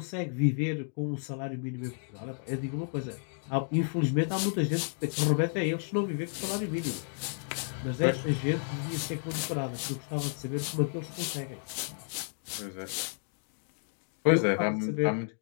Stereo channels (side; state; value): right; silent; 57 dB below the other